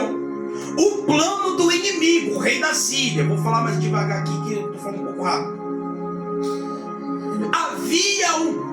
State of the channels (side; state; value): both; identical; correlation 1.00